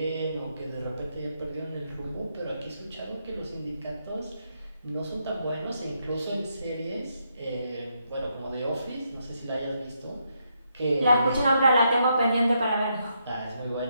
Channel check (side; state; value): both; inverted; correlation -0.78